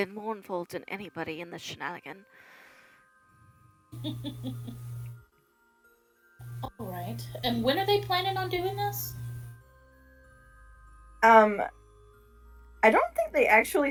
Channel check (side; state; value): both; identical; correlation 1.00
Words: more involved than anybody in the shenanigan. Alright. And when are they planning on doing this? I don't think they actually